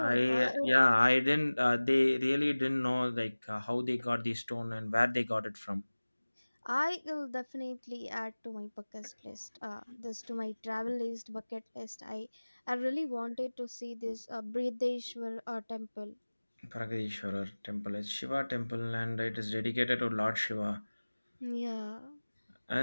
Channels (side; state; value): both; inverted; correlation -1.00